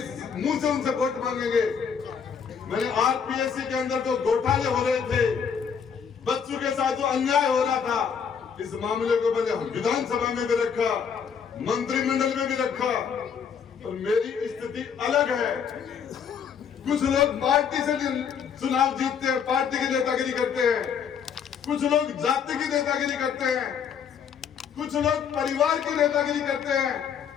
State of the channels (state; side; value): quieter; right; 7.1 dB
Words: मुंह से उनसे वोट मांगेंगे। मैंने आरपीएससी के अंदर जो घोटाले हो रहे थे, बच्चों के साथ जो अन्याय हो रहा था, इस मामले को मैंने विधानसभा में भी रखा, मंत्रिमंडल में भी रखा। और मेरी स्थिति अलग है। कुछ लोग पार्टी से चुनाव जीतते हैं, पार्टी की नेतागिरी करते हैं, कुछ लोग जाति की नेतागिरी करते हैं, कुछ लोग परिवार की नेतागिरी करते हैं।